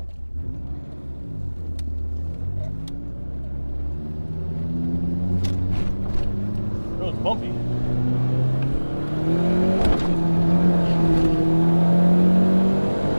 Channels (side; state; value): both; inverted; correlation -1.00